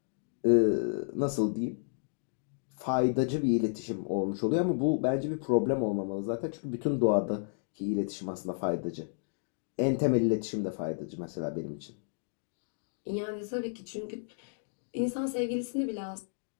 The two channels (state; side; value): silent; right; digital silence